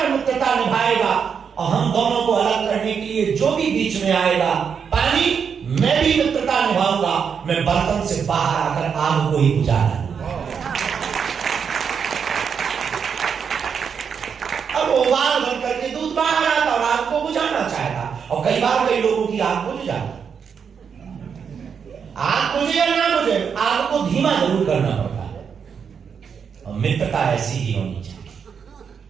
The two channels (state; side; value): quieter; left; 6.7 dB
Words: मित्रता निभाएगा और हम दोनों को अलग करने के लिए जो भी बीच में आएगा, पानी, मैं भी मित्रता निभाऊंगा, मैं बर्तन से बाहर आकर आग को ही बुझाना। अब उबाल भर करके दूध बाहर आता और आग को बुझाना चाहता, और कई बार कई लोगों की आग बुझ जाती। आग बुझे या ना बुझे, आग को धीमा जरूर करना पड़ता है, और मित्रता ऐसी ही होनी चाहिए।